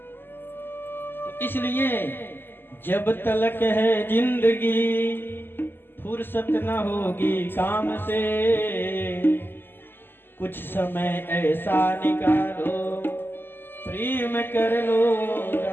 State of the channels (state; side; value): late; right; 0.098 ms